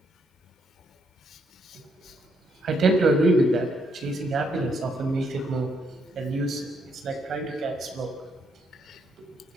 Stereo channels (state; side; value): normal; both; correlation 0.75